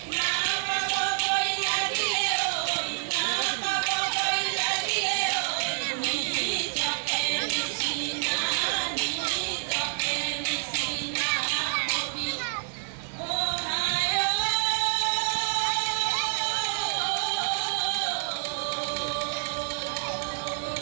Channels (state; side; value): silent; left; digital silence